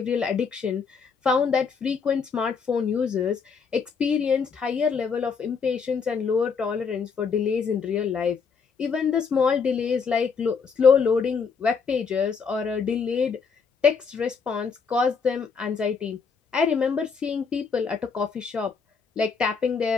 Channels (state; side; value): quieter; right; 5.6 dB